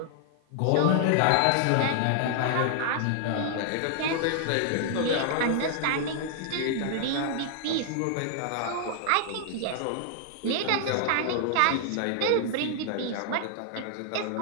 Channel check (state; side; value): different; both; correlation 0.00